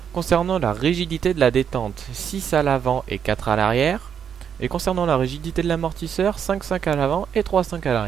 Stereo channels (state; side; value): quieter; left; 8.0 dB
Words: Concernant la rigidité de la détente, 6 à l'avant et 4 à l'arrière. Et concernant la rigidité de l'amortisseur, 5,5 à l'avant et 3,5 à